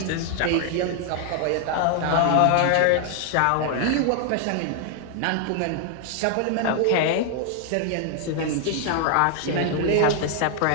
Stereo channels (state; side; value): different; both; correlation 0.00